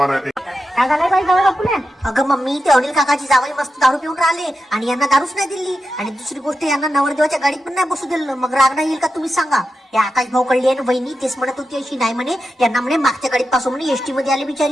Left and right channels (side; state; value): both; normal; correlation 0.89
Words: आहे ते. काय झालंय बाई जावई बापूला? अगं मम्मी ते अनिल काकाची जावई मस्त दारू पिऊन राहिले आणि यांना दारूच नाही दिली. आणि दुसरी गोष्ट यांना नवरदेवाच्या गाडीत पण नाही बसू दिलं. मग राग नाही येईल का तुम्ही सांगा? या आकाश भाऊ कळली आहे ना बहिणी तेच म्हणत होती अशी नाही म्हणे यांना म्हणे मागच्या गाडीत पासून म्हणे एसटी मध्ये आले